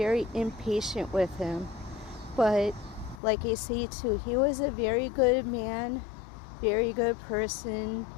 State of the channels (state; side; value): drops out; right; at 3.2 s